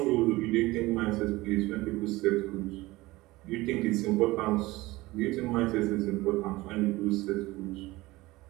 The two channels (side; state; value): left; quieter; 19.9 dB